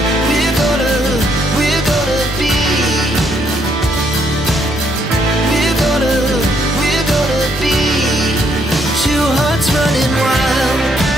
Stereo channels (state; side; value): normal; both; correlation 0.71